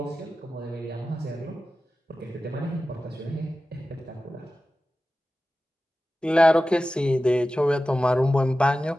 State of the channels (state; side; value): normal; both; correlation 0.94